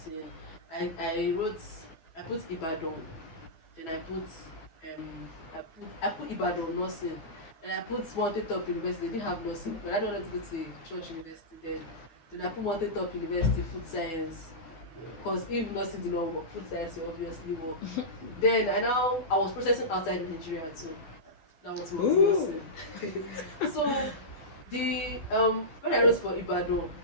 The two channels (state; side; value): late; right; 12 ms